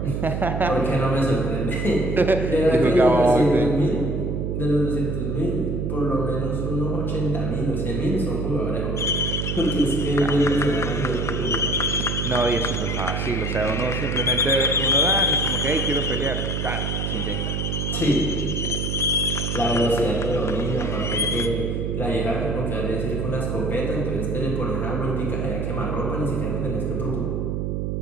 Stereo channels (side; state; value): right; noise; hum, 1 dB below the sound